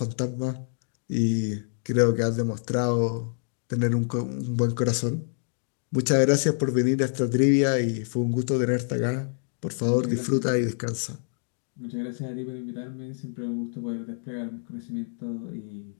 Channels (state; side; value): silent; right; digital silence